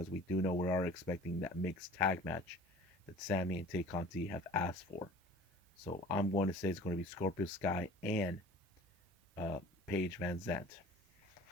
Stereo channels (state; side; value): normal; both; correlation 0.45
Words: we do know we are expecting that mixed tag match that Sammy and Tay Conti have asked for. So I'm going to say it's going to be Scorpio Sky and Paige Van Zant.